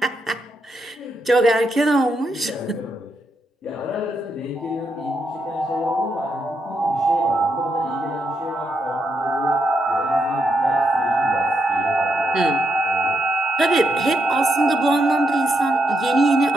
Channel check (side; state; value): both; normal; correlation 0.81